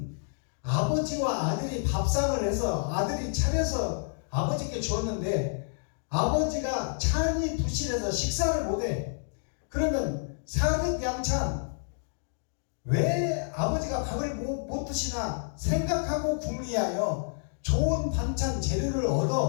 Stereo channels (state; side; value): silent; right; digital silence